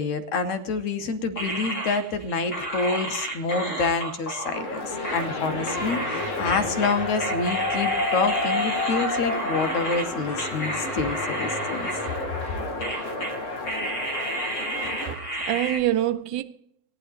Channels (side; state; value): right; late; 3.7 ms